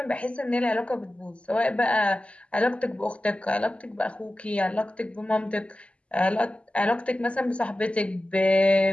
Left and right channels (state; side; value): late; right; 0.059 ms